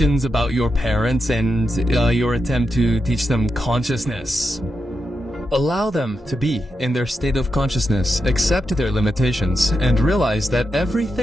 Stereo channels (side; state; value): both; normal; correlation 0.86